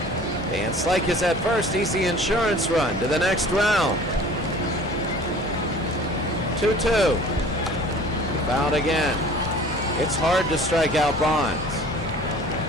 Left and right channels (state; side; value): normal; both; correlation 0.46